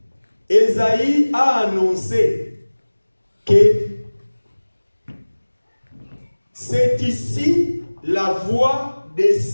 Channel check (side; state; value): both; inverted; correlation -1.00